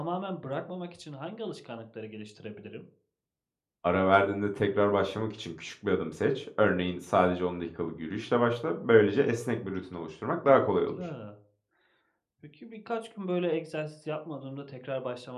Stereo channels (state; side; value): identical; both; correlation 1.00